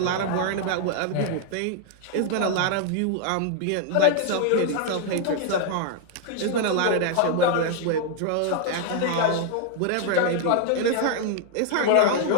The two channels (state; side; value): different; both; correlation 0.00